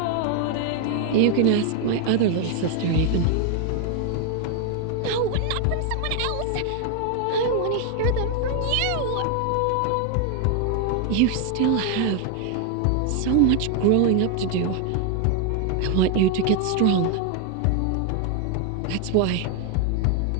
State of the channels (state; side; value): different; both; correlation 0.01